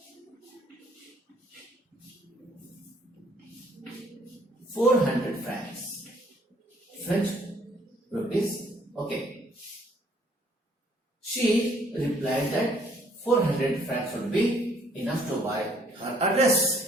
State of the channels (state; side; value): normal; both; correlation 0.63